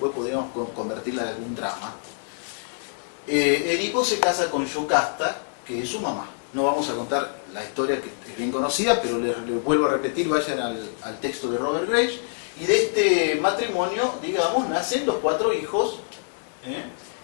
podríamos convertirla en algún drama. Edipo se casa con Yocasta, que es su mamá. No vamos a contar la historia, que es bien conocida, pero les vuelvo a repetir, vayan al texto de Robert Graves, y de este matrimonio, digamos, nacen los 4 hijos,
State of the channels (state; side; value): silent; right; digital silence